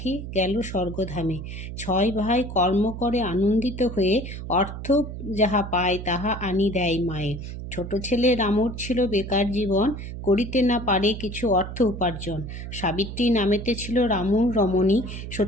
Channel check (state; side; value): noise; right; hum, 8 dB below the sound